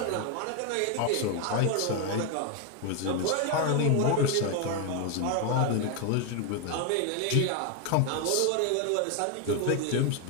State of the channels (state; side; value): different; both; correlation 0.01